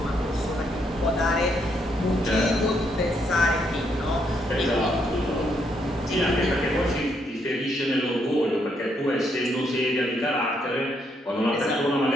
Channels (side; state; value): both; normal; correlation 0.75